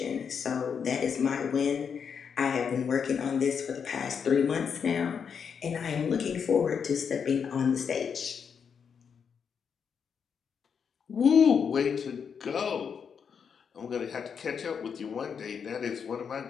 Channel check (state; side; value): quieter; right; 6.8 dB